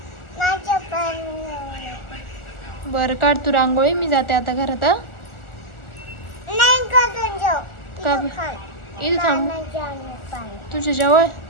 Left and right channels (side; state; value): right; late; 1.4 ms